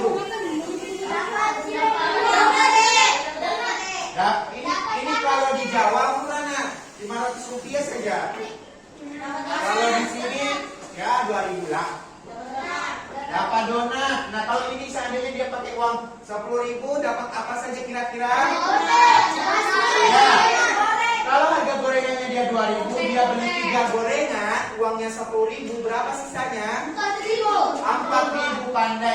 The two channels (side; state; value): both; identical; correlation 1.00